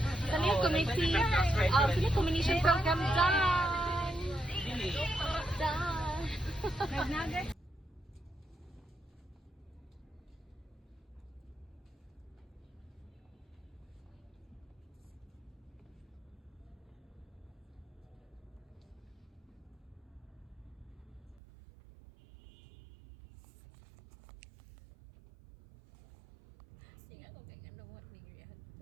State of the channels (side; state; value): left; drops out; at 21.4 s